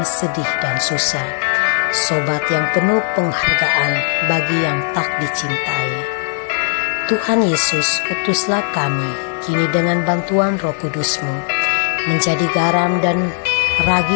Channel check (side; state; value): right; silent; 56 dB below the other